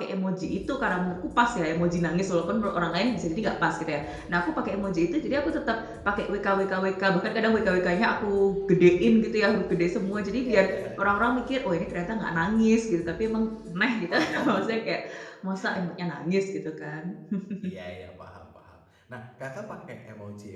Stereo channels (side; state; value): both; identical; correlation 1.00